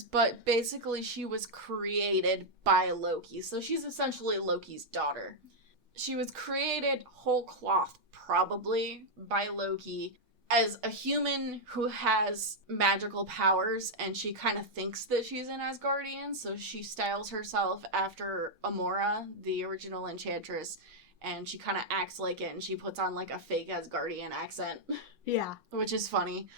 but basically she was created by Loki. So she's essentially Loki's daughter. She was created whole cloth, probably, by Loki as a human who has magical powers, and she kind of thinks that she's an Asgardian, so she styles herself after Amora, the original Enchantress, and she kind of acts like it, and she puts on, like, a fake Asgardian accent. Yeah. Which is funny.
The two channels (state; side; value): late; left; 6.3 ms